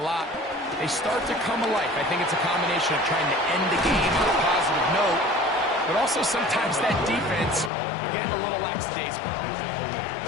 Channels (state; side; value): drops out; right; at 7.7 s